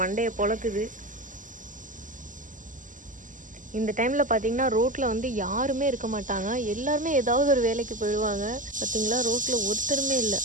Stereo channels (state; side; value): late; left; 0.38 ms